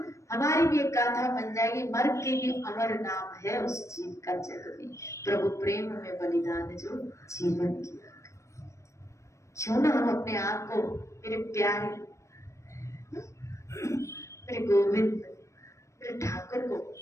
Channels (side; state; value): right; late; 0.15 ms